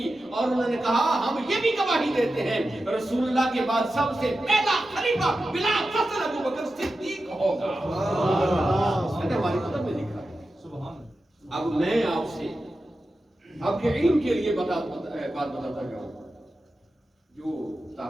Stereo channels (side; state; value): both; normal; correlation 0.92